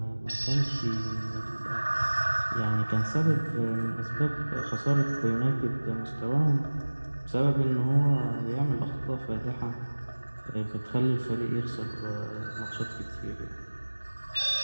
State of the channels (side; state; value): both; inverted; correlation -1.00